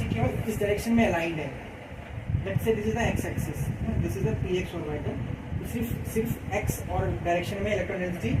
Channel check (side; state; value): both; identical; correlation 1.00